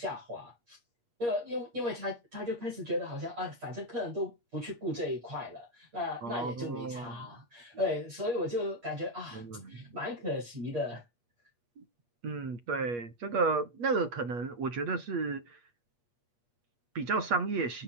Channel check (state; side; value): late; left; 8.4 ms